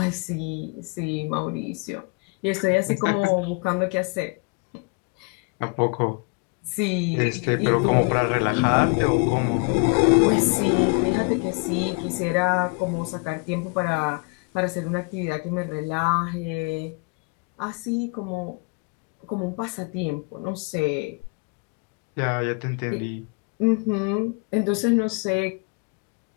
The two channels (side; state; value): right; quieter; 33.2 dB